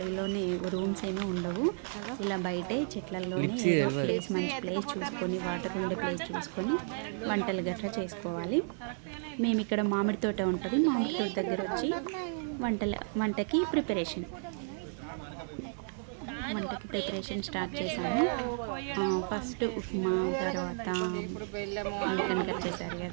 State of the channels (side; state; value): left; silent; 56 dB below the other